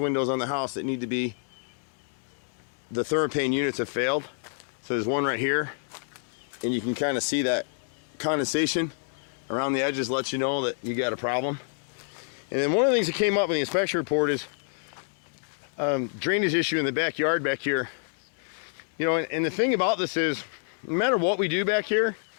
on the house that need to be, the thermopane units have failed. So there's one right here, and you can kind of see that condensation around the edges lets you know that you got a problem. And then one of the things that came up in the inspection report is drainage issue in the backyard back here. You know, and the thing about this is, no matter what we do back here,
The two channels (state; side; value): silent; right; 60 dB below the other